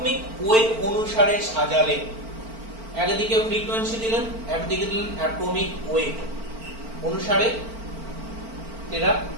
ওয়েট অনুসারে সাজালেন। একদিকে ফ্রিকোয়েন্সি দিলেন, একদিকে দিলেন অ্যাটমিক ওয়েট অনুসারে এরা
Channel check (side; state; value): left; late; 4.4 ms